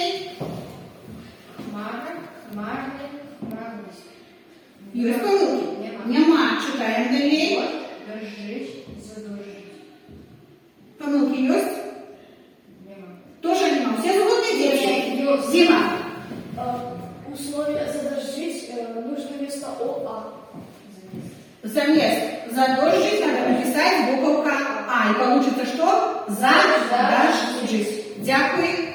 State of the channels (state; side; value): identical; both; correlation 1.00